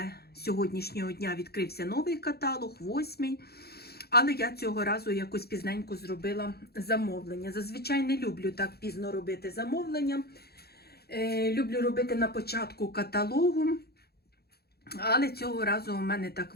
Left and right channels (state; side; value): late; right; 0.46 ms